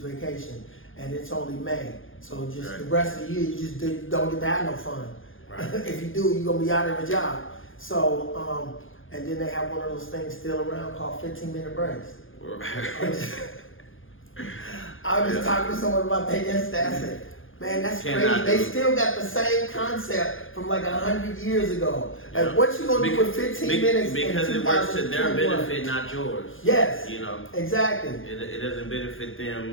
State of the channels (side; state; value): right; late; 0.59 ms